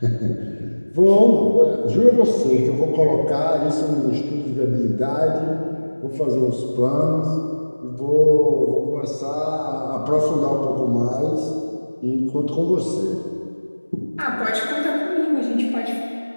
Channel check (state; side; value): inverted; both; correlation -1.00